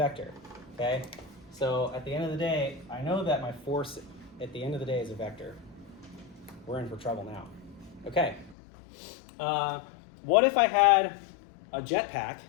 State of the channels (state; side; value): drops out; right; at 8.6 s